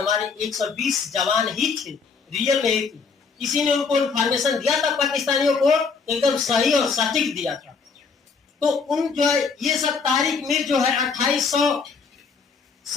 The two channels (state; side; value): quieter; right; 5.2 dB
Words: 120 जवान ही थे, रियल में ही थे। किसी ने उनको इन्फॉर्मेशन दिया था पाकिस्तानियों को, एकदम सही और सटीक दिया था। तो उन जो है ये सब तारिक मीर जो है 2800